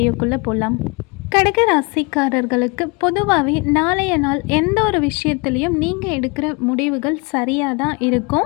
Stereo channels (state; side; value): quieter; right; 29.8 dB